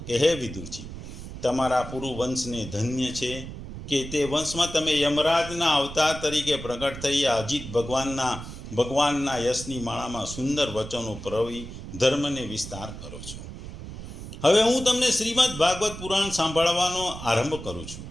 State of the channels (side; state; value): right; noise; rumble, 11 dB below the sound